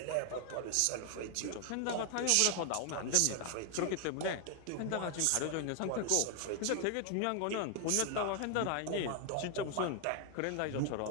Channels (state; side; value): different; both; correlation 0.00